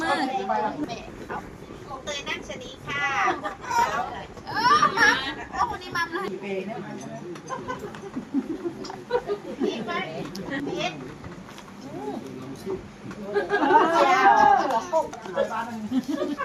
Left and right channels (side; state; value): both; identical; correlation 1.00